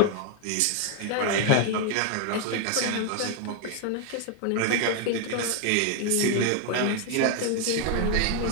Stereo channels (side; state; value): both; different; correlation 0.01